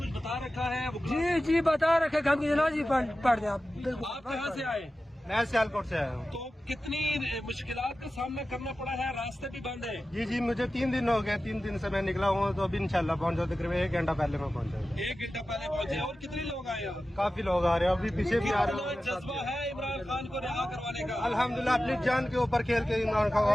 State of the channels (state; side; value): normal; both; correlation 0.94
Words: کچھ بتا رکھا ہے؟ جی جی بتا رکھے، ہم کی جنازی پڑھ دیں آپ۔ آپ کہاں سے آئے؟ میں سیالکوٹ سے آیا ہوں۔ تو کتنی مشکلات کا سامنا کرنا پڑا ہے؟ راستے بھی بند ہے؟ جی مجھے 3 دن ہو گئے، 3 دن سے میں نکلا ہوں، تو ابھی انشاءاللہ پہنچ جاؤ، تقریباً 1 گھنٹہ پہلے میں پہنچا ہوں۔ 1 گھنٹہ پہلے پہنچے۔ اور کتنے لوگ آئے ہیں؟ کافی لوگ آ رہے ہیں، ابھی پیچھے بھی آ رہے کتنا جذبہ ہے عمران خان کو رہا کروانے کا؟ الحمدللہ اپنی جان کے اوپر کھیل کے عمران